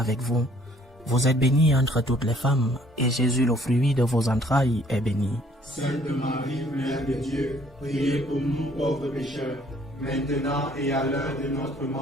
vous. Vous êtes bénie entre toutes les femmes, et Jésus, le fruit de vos entrailles, est béni. Sainte Marie, Mère de Dieu, priez pour nous pauvres pécheurs, maintenant et à l'heure de notre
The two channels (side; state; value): both; normal; correlation 0.60